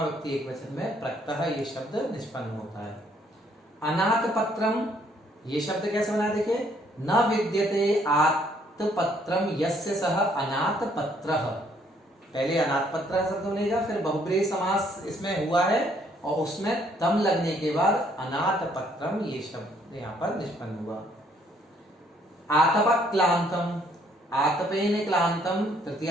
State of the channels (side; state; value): both; normal; correlation 0.66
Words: व्यक्ति एक वचन में प्रत्यह ये शब्द निष्पन्न होता है। अनाथ पत्रम ये शब्द कैसे बना देखिए। न विद्यते आत्पत्रम यस्य सह अनाथ पत्रः, पहले अनाथ पत्र शब्द बनेगा, फिर बहुब्रीहि समास इसमें हुआ है और उसमें तम लगने के बाद अनाथ पत्रम ये शब्द यहाँ पर निष्पन्न हुआ। आतप क्लांतम, आतपेन क्लांतम